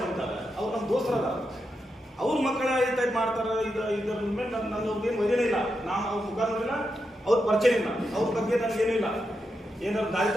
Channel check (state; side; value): normal; both; correlation 0.86